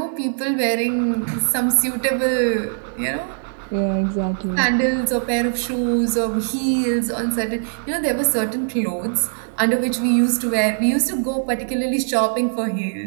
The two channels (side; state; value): left; silent; digital silence